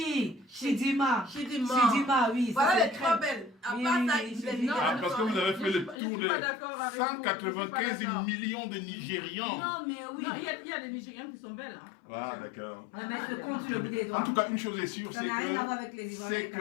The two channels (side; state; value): right; drops out; at 6.0 s